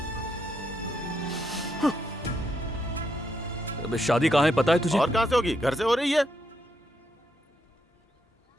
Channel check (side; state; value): both; normal; correlation 0.78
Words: अब शादी कहाँ है पता है तुझे? और कहाँ से होगी? घर से हो रही है।